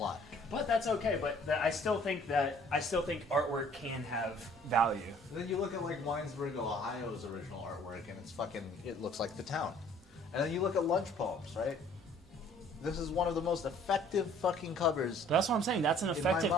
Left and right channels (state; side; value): normal; both; correlation 0.56